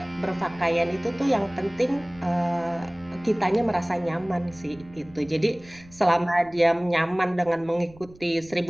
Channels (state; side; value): noise; right; rumble, 23 dB below the sound